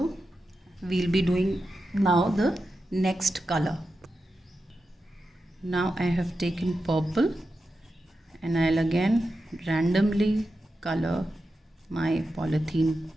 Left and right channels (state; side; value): normal; both; correlation 0.90